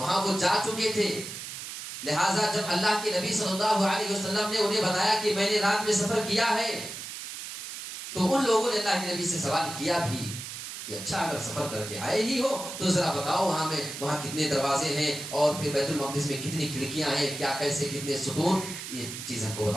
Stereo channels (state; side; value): noise; right; hiss, 9 dB below the sound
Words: وہ جا چکے تھے. لہٰذا جب اللہ کے نبی صلی اللہ علیہ وسلم نے انہیں بتایا کہ میں نے رات میں سفر کیا ہے تو ان لوگوں نے اللہ کے نبی سے سوال کیا بھی کہ اچھا اگر سفر کر کے آئے ہی ہو تو ذرا بتاؤ وہاں کتنے دروازے ہیں اور پھر بیت المقدس میں کتنی کھڑکیاں ہیں، کیا کیسے کتنے ستون، یہ چیز ہم کو